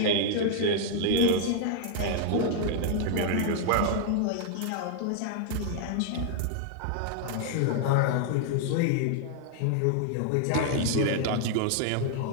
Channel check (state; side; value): different; both; correlation -0.01